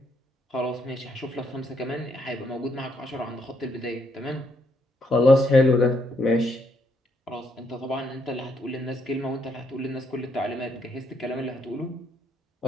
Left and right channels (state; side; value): normal; both; correlation 0.74